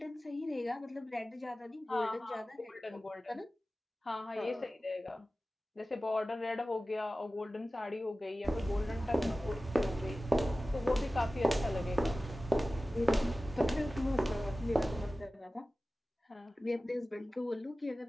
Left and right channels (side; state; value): both; normal; correlation 0.96